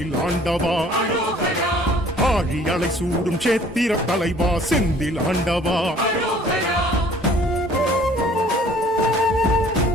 ஆண்டவா அரோகரா ஆழி அலை சூடும் சேத்திர தலைவா செந்தில் ஆண்டவா அரோகரா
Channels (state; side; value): normal; both; correlation 0.54